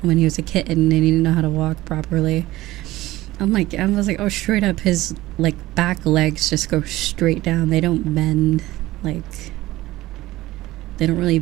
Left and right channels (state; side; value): quieter; left; 17.2 dB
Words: when he was a kitten and he didn't know how to walk properly. I was like, oh, straight up his like back legs just go straight down. They don't bend like, they don't really